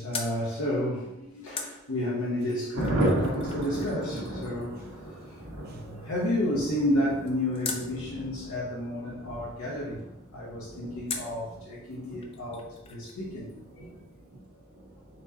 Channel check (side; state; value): both; normal; correlation 0.48